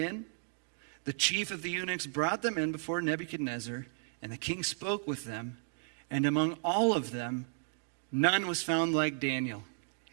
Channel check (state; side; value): silent; left; digital silence